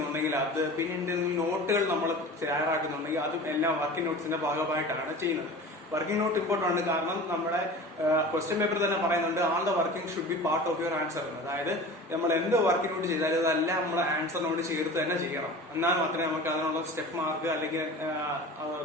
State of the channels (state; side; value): normal; both; correlation 0.36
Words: അത്, പിന്നെ എന്തെങ്കിലും നോട്ടുകൾ നമ്മൾ തയ്യാറാക്കുന്നുണ്ടെങ്കിൽ അതും എല്ലാം വർക്കിംഗ് നോട്ട്സിന്റെ ഭാഗമായിട്ടാണ് ചെയ്യുന്നത്. വർക്കിംഗ് നോട്ട് ഇമ്പോർട്ടന്റ് ആണ്. കാരണം നമ്മുടെ ക്വസ്റ്റ്യൻ പേപ്പർ തന്നെ പറയുന്നുണ്ട്, all the working should be part of your answer. അതായത് നമ്മൾ എന്ത് വർക്കിംഗ് നോട്ട് ചെയ്താലും അതെല്ലാം നമ്മുടെ ആൻസറിനോട് ചേർത്ത് തന്നെ ചെയ്യണം. എന്നാൽ മാത്രമേ നമുക്ക് അതിനുള്ള സ്റ്റെപ്പ് മാർക്ക് അല്ലെങ്കിൽ